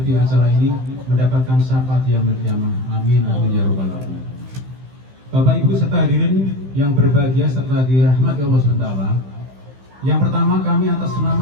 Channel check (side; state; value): left; late; 15 ms